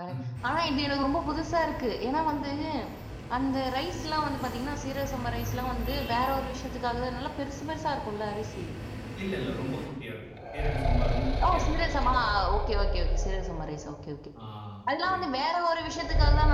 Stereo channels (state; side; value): identical; both; correlation 1.00